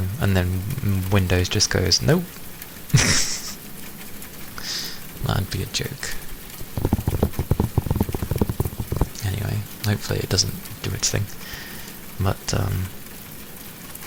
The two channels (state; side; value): identical; both; correlation 1.00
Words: and then Windows just goes, nope. That'd be a joke. Anyway, hopefully it doesn't do its thing. But